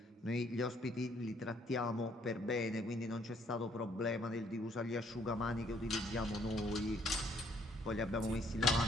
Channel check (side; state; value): both; normal; correlation 0.65